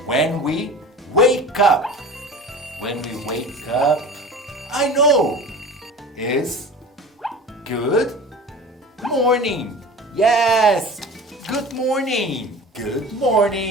when we wake up. When we wake up, I know, is good morning. Yes, good morning. Good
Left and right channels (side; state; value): both; normal; correlation 0.37